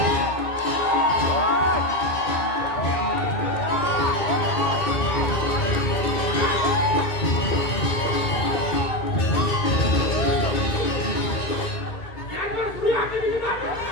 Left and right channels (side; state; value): right; late; 2.2 ms